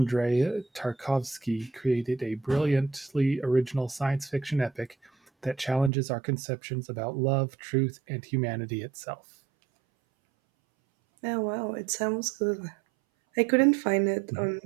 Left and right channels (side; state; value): left; drops out; at 5.9 s